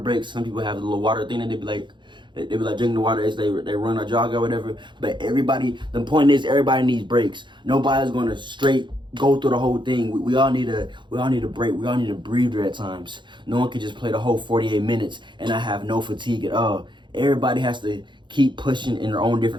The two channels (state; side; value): late; left; 0.23 ms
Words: Some people have a little water thing, and they be like drinking the water as they run or jog or whatever. But the point is, everybody needs breaks. Nobody's going to straight go through the whole thing. We all need a break. We all need a breather at times. No one can just play the whole 48 minutes and not have no fatigue at all. Everybody has to keep pushing in their own